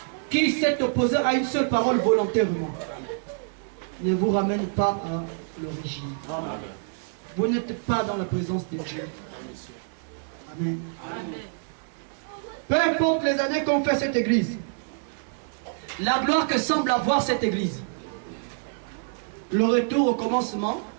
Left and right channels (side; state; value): left; silent; digital silence